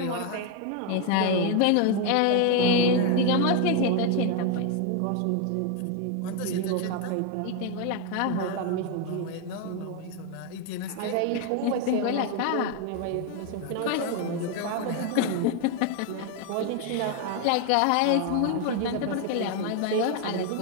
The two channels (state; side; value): different; both; correlation 0.01